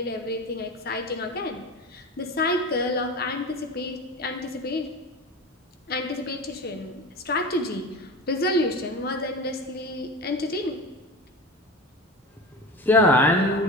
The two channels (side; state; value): both; normal; correlation 0.29